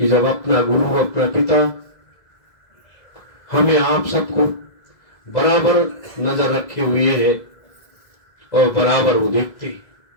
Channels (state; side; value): late; right; 2.0 ms